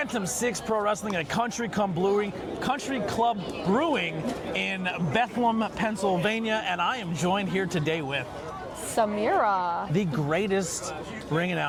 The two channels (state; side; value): identical; both; correlation 1.00